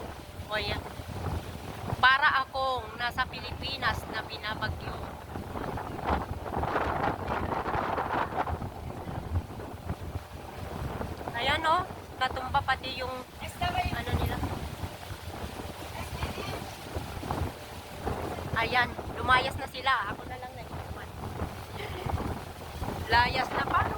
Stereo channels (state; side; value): identical; both; correlation 1.00